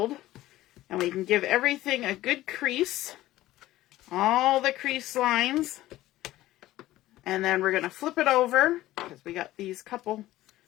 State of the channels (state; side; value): quieter; right; 15.8 dB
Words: And we can give everything a good crease, all the crease lines. And then we're going to flip it over, because we got these couple